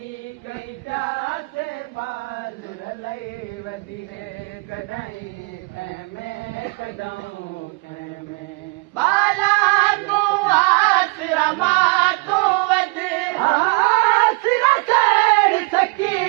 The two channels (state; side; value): quieter; left; 32.5 dB